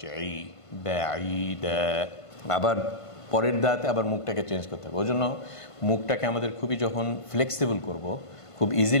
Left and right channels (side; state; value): right; late; 1.5 ms